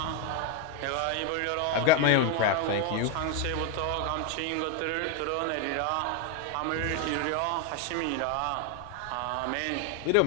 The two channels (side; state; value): both; different; correlation 0.01